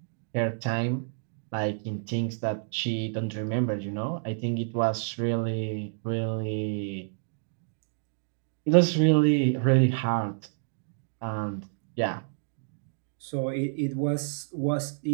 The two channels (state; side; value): silent; left; digital silence